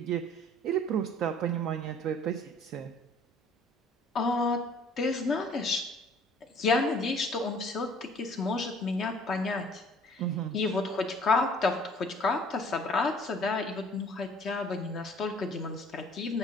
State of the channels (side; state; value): both; normal; correlation 0.54